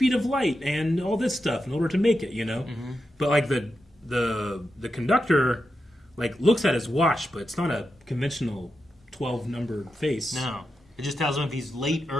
of light and all this stuff in order to make it, But, like, the conductor, like, looks at his watch, but it's not a conventional 12-number face. No. It just tells him if he's late,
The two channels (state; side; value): normal; both; correlation 0.88